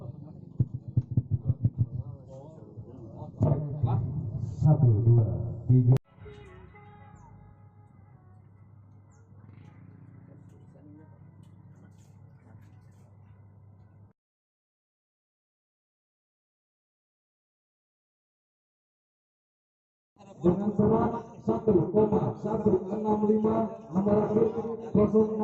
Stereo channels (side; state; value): both; identical; correlation 1.00